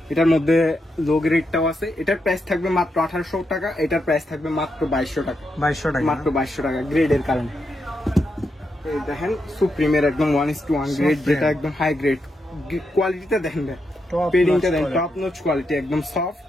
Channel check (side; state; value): both; normal; correlation 0.83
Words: এটার মধ্যে লো গ্রেডটাও আছে। এটার প্রাইস থাকবে মাত্র 1800 টাকা। এটার প্রাইস থাকবে মাত্র 2200 টাকা। 2200 টাকা। মাত্র 2200 টাকা গ্রেডের কারণে। এই দেখেন সুপ্রিমের একদম 1:1 গ্রেড, Supreme। যেটা একদম হাই গ্রেড। কোয়ালিটিটা দেখেন, Top পেডিংটা notch দেখেন, quality। টপ নোচ কোয়ালিটি, একদম সফট।